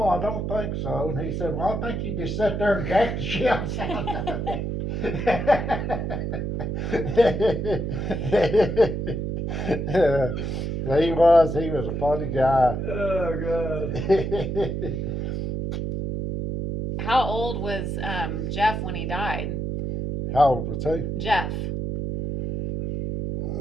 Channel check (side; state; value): right; noise; hum, 2 dB below the sound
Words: I don't think so. And he said, well, I think you just sat there and jacked the shells out of it. He was a funny guy. Oh, God. How old was Jeff when he died? How old was he? Jeff.